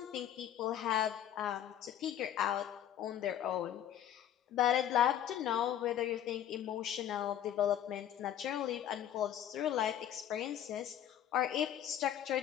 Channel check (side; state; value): right; quieter; 10.6 dB